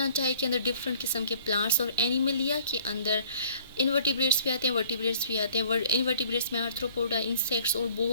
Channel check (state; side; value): inverted; both; correlation -0.55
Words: के अंदर डिफरेंट किस्म के प्लांट्स और एनिमलिया के अंदर इनवर्टिब्रेट्स भी आते हैं, वर्टिब्रेट्स भी आते हैं। इनवर्टिब्रेट्स में आर्थ्रोपोडा, इंसेक्ट्स और